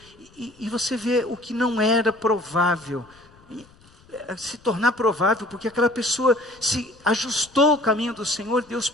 E você vê o que não era provável se tornar provável, porque aquela pessoa se ajustou ao caminho do Senhor. Deus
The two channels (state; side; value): noise; left; rumble, 28 dB below the sound